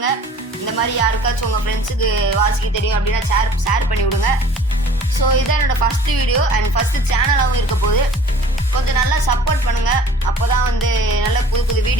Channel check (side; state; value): both; normal; correlation 0.49